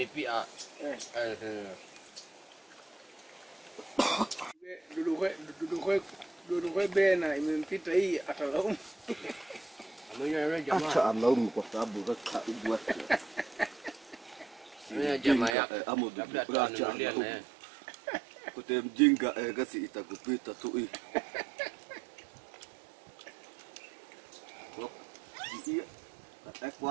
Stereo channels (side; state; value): left; drops out; at 15.6 s